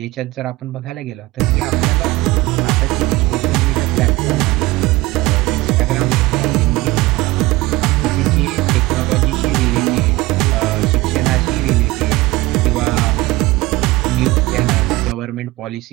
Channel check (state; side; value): quieter; left; 20.2 dB